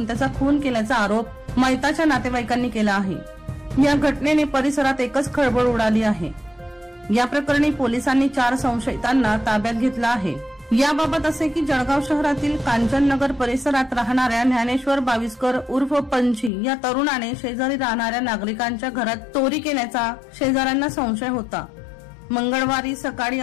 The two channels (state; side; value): drops out; right; at 16.5 s